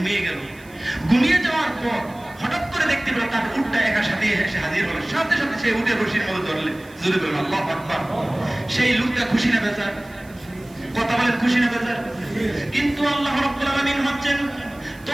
গেল। ঘুমিয়ে যাওয়ার পর হঠাৎ করে দেখতে পেল তার উটটা একা সাথে এসে হাজির হলো। সাথে সাথে সে উটের রশির মধ্যে ধরলে। জোরে বলুন আল্লাহু আকবার। সেই লোকটা খুশি না বেজার? কথা বলেন, খুশি না বেজার? কিন্তু আল্লাহ রাব্বুল আলামিন হচ্ছেন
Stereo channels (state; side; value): noise; right; hiss, 26 dB below the sound